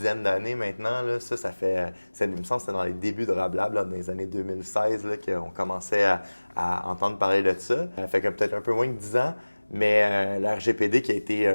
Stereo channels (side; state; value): both; inverted; correlation -1.00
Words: d'années maintenant. Là. Il me semble que c'était dans les débuts de Rablab, là, dans les années 2016, là, qu'on commençait à entendre parler de ça. Ça fait que peut-être un peu moins que 10 ans, mais la RGPD qui a été